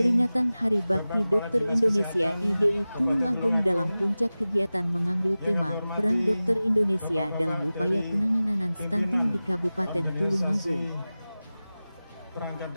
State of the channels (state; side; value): inverted; both; correlation -0.97